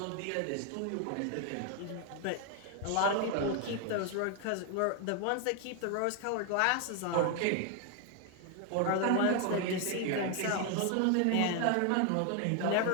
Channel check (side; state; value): both; different; correlation 0.01